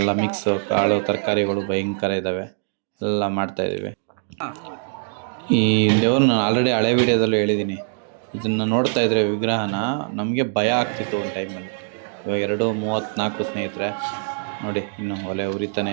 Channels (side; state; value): left; silent; digital silence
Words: ಮಿಕ್ಸ್ ಕಾಳು ತರಕಾರಿಗಳು ಭಯಂಕರ ಇದ್ದಾವೆ, ಎಲ್ಲ ಮಾಡ್ತಾ ಇದ್ದೀವಿ. ಈ ದೇವ್ರನ್ನ ಆಲ್ರೆಡಿ ಹಳೆ ವಿಡಿಯೋದಲ್ಲೂ ಹೇಳಿದ್ದೀನಿ. ಇದನ್ನು ನೋಡ್ತಾ ಇದ್ರೆ ವಿಗ್ರಹನ ನಮಗೆ ಭಯ ಆಗ್ತಿತ್ತು ಒಂದು ಟೈಮಲ್ಲಿ. ಇವಾಗ 2:34 ಸ್ನೇಹಿತರೆ. ನೋಡಿ ಇನ್ನು ಒಲೆ ಉರಿತಾನೆ